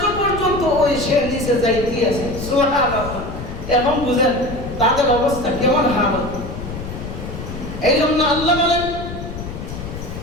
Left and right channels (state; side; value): noise; left; rumble, 9 dB below the sound